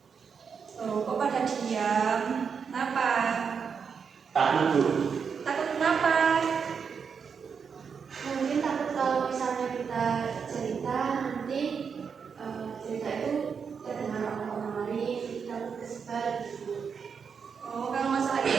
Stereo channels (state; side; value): quieter; left; 6.3 dB